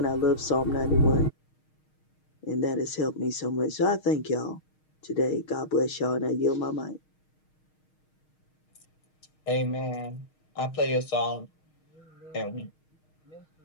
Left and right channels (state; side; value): late; right; 6.4 ms